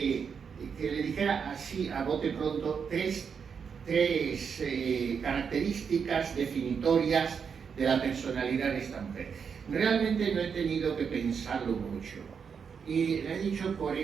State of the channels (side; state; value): left; quieter; 6.4 dB